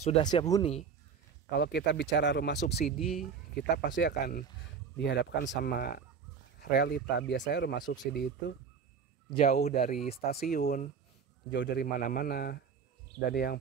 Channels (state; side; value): quieter; left; 6.3 dB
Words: siap huni. Kalau kita bicara rumah subsidi, kita pasti akan dihadapkan sama realita. Biasanya rumah subsidi itu jauh dari stasiun, jauh dari mana-mana, dan yang